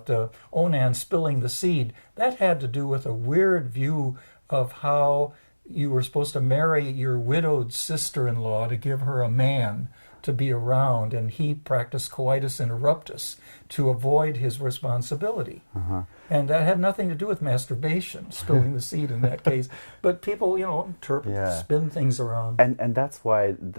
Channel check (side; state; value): both; inverted; correlation -1.00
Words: Onan spilling the seed, that had to do with a weird view of how you were supposed to marry your widowed sister-in-law to give her a man to be around, and he practiced coitus interruptus to avoid his responsibility. And that had nothing to do with masturbation, spilling the seed in that case. But people, you know, interpret, spin things around. And that's why